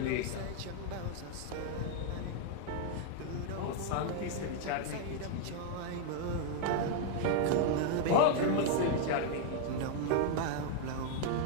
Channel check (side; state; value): both; different; correlation 0.00